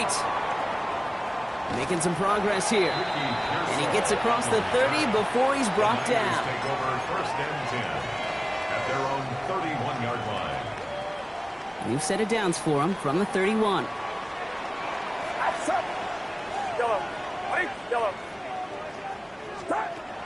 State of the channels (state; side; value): identical; both; correlation 1.00